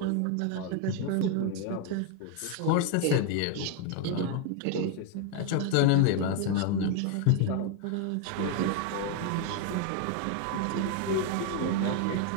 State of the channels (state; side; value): different; both; correlation 0.01